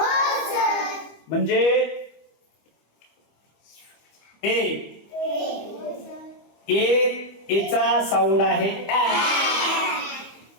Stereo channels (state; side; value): late; right; 25 ms